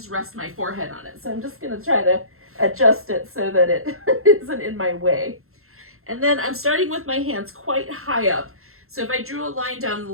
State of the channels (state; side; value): late; left; 0.62 ms